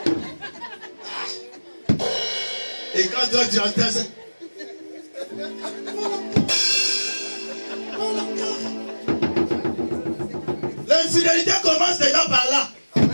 Et quand toi tu entends ça, l'infidélité commence déjà par là.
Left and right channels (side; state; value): both; inverted; correlation -1.00